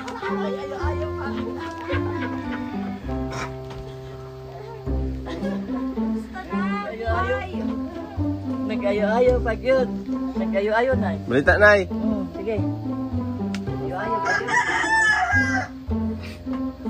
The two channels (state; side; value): identical; both; correlation 1.00